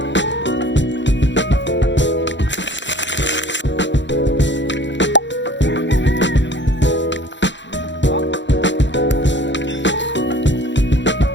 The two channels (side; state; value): right; late; 0.53 ms